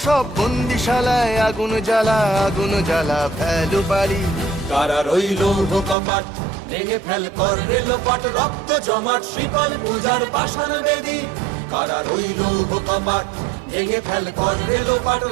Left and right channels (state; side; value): drops out; left; at 6.0 s